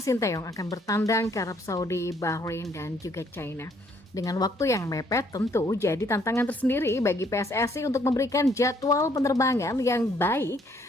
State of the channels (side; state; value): both; normal; correlation 0.66